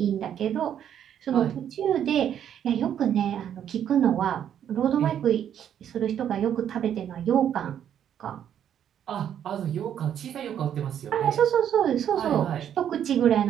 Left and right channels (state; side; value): quieter; left; 9.6 dB